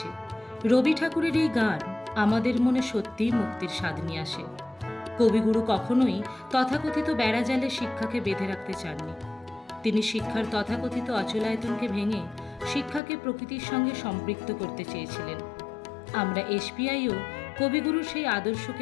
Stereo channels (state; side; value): drops out; right; at 13.0 s